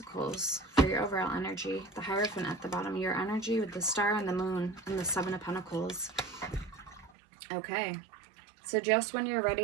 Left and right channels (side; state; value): left; drops out; at 7.1 s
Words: for your overall energy. The Hierophant at the bottom, your energy with the Star and the Moon and the 7 of Pentacles. Okay, so just when you're